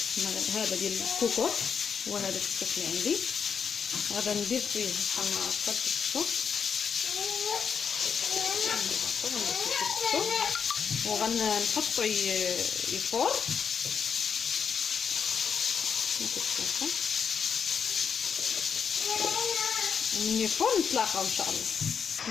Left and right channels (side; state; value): right; quieter; 6.8 dB